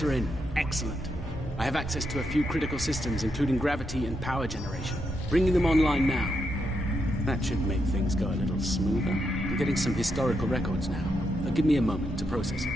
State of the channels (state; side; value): normal; both; correlation 0.82